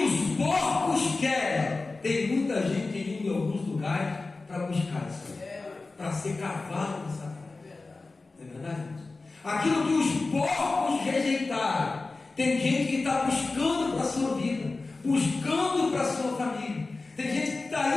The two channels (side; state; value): right; quieter; 3.6 dB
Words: os porcos querem, tem muita gente indo em alguns lugares para buscar isso, para ser cavalo de Satanás. Não é verdade, irmãos? Aquilo que os porcos rejeitaram, tem gente que está buscando para a sua vida, buscando para a sua família. Tem gente que está